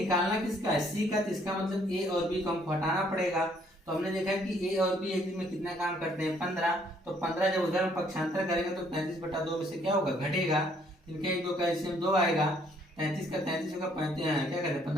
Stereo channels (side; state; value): both; normal; correlation 0.65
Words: किसका है सी का, तो इसका मतलब ए और बी को हमको हटाना पड़ेगा। तो हमने देखा कि ए और बी एक दिन में कितना काम करते हैं 15, तो 15 जब उधर हम पक्षांतर करेंगे तो 33/2 में से क्या होगा घटेगा, इनके 1 2 कैल्शियम 2 आएगा, 33 का 33 होगा 35, क्या कहते हैं